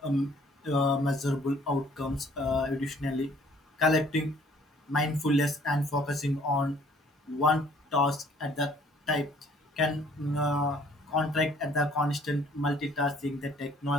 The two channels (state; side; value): normal; both; correlation 0.59